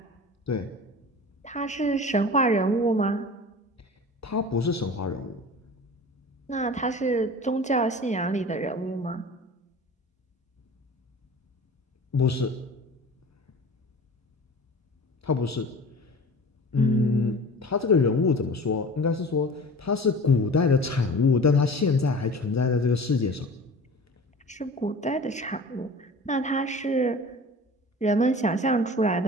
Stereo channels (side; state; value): both; normal; correlation 0.39